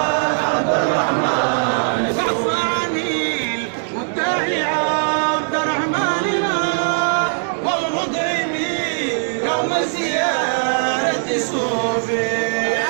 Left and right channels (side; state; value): left; silent; 65 dB below the other